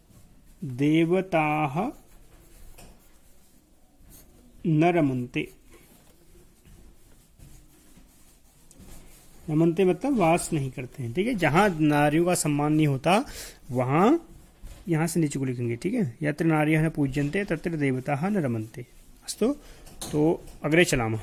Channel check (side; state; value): both; identical; correlation 1.00